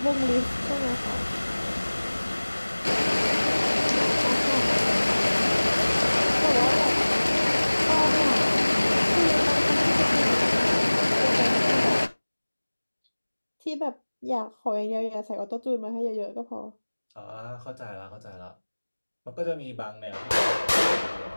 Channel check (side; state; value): both; inverted; correlation -1.00